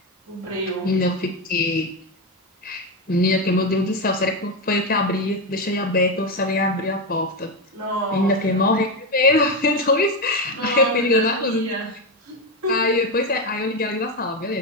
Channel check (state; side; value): normal; both; correlation 0.11